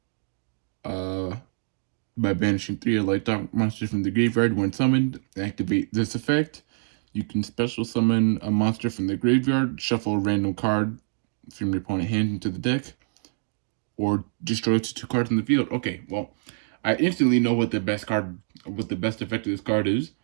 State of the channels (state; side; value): silent; left; digital silence